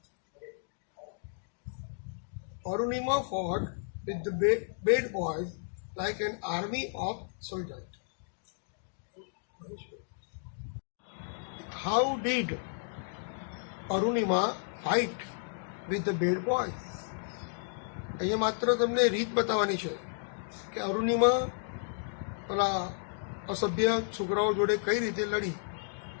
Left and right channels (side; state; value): right; silent; digital silence